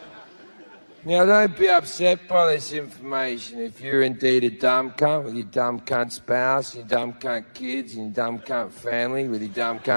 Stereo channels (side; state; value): both; inverted; correlation -1.00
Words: Now, don't be upset by this information if you're indeed a dumb cunt with your dumb cunt spouse, your dumb cunt kids, and your dumb cunt family with your dumb